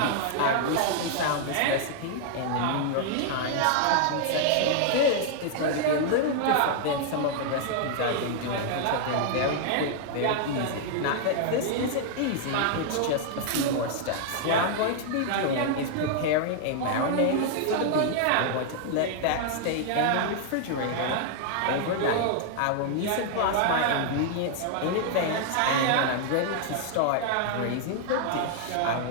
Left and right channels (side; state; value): both; different; correlation -0.01